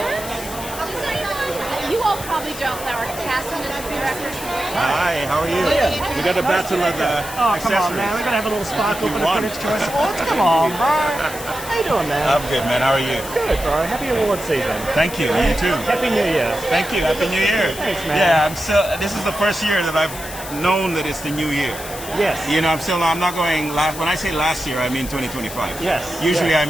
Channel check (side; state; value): left; noise; hiss, 11 dB below the sound